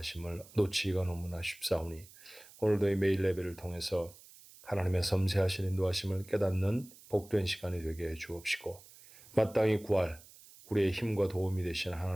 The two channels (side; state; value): right; noise; hiss, 22 dB below the sound